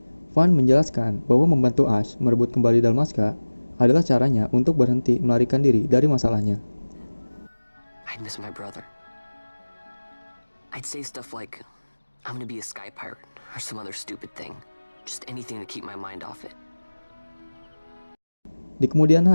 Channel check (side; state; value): both; inverted; correlation -1.00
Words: Van menjelaskan bahwa membantu Ash merebut kembali Dalmasca adalah caranya untuk berhenti melarikan diri dari masalahnya. I'd miss my brother. I'd say stuff like, I'm gonna be a sky pirate. Or some other stupid thing. Just anything to keep my mind off it. Di kemudian